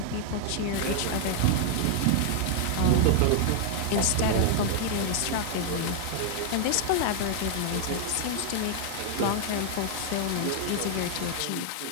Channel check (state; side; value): different; both; correlation 0.00